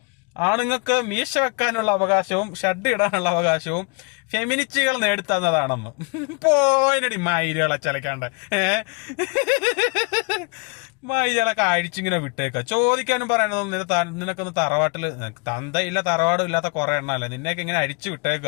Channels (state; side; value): quieter; right; 32.9 dB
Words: ആണുങ്ങൾക്ക് മീശ വെക്കാനുള്ള അവകാശവും ഷഡ് ഇടാനുള്ള അവകാശവും ഫെമിനിസ്റ്റുകൾ നേടിത്തന്നതാണെന്ന്. പോയിനടി മൈലുകളെ ചലക്കാണ്ട് മൈലുകളൊക്കെ അഴിച്ചിങ്ങനെ വിട്ടേക്ക. ചോദിക്കാനും പറയണതൊന്നും നിനക്കൊന്ന് തറവാട്ടില് തന്തയില്ല തറവാടും ഇല്ലാത്ത കുറെ എണ്ണല്ലേ, നിന്നെയൊക്കെ ഇങ്ങനെ അഴിച്ചു